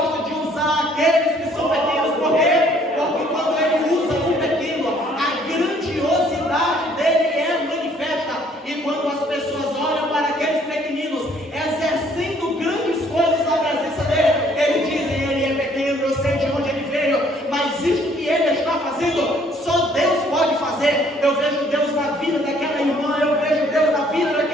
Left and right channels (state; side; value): normal; both; correlation 0.61